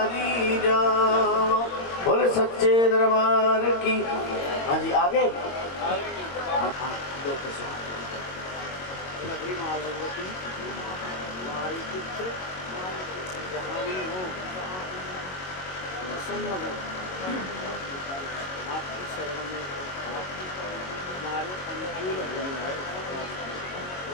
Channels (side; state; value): right; late; 22 ms